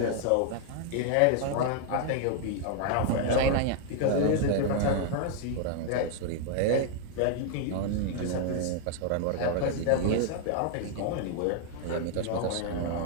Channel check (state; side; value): different; both; correlation 0.00